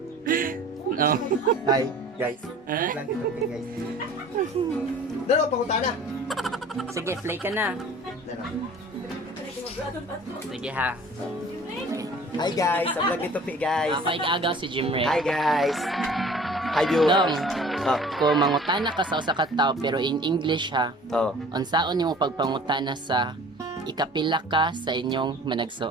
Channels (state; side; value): normal; both; correlation 0.47